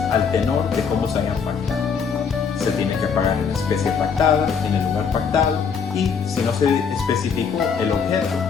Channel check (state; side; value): quieter; right; 6.2 dB